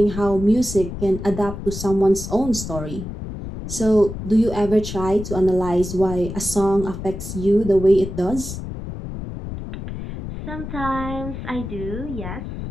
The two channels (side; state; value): left; noise; rumble, 8 dB below the sound